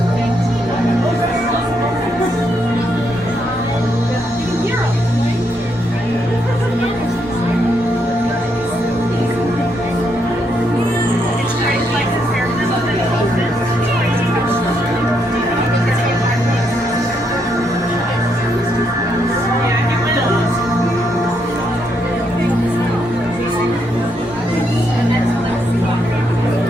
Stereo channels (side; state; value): both; normal; correlation 0.77